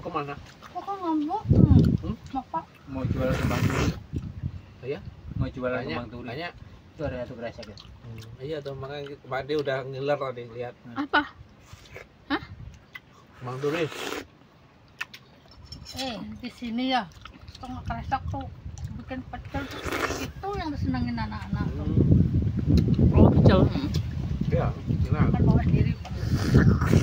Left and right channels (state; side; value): identical; both; correlation 1.00